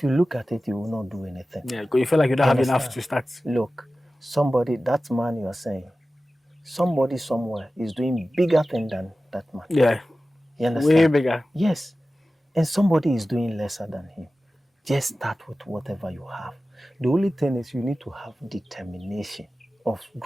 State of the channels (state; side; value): normal; both; correlation 0.95